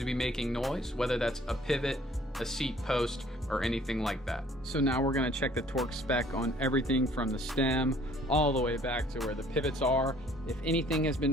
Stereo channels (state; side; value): normal; both; correlation 0.57